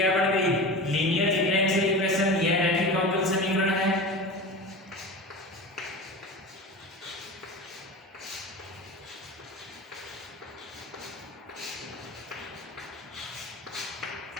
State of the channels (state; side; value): normal; both; correlation 0.30